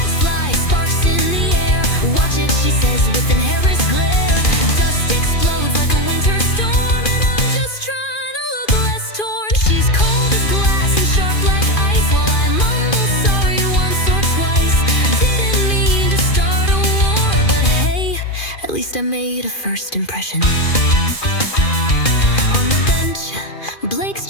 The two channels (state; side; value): late; right; 2.4 ms